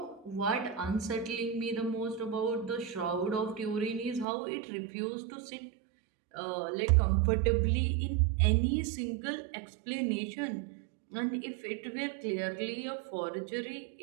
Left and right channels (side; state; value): left; drops out; at 4.2 s